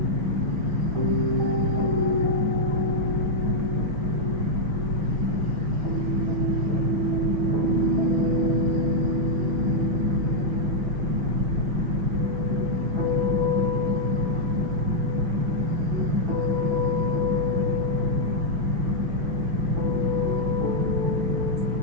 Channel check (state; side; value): late; left; 5.9 ms